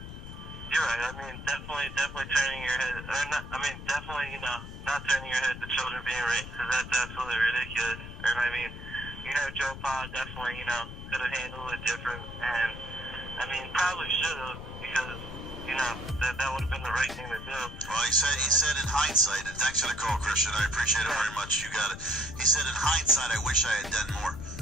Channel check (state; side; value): noise; left; rumble, 11 dB below the sound